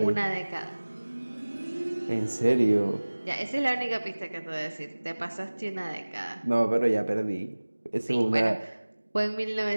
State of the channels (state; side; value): inverted; both; correlation -1.00